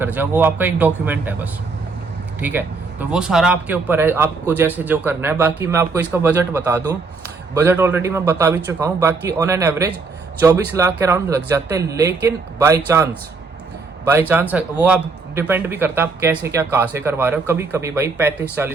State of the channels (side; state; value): left; quieter; 4.2 dB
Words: जाओ, वो आपका एक डॉक्यूमेंट है बस, ठीक है। तो वो सारा आपके ऊपर है, आपको जैसे जो करना है। बाकी मैं आपको इसका बजट बता दूं, बजट ऑलरेडी मैं बता भी चुका हूँ। बाकी ऑन एन एवरेज 24 लाख के अराउंड लग जाते हैं, लेकिन बाई चांस वो आप डिपेंड भी करता है आप कैसे क्या कहाँ से करवा रहे हो। कभी कभी भाई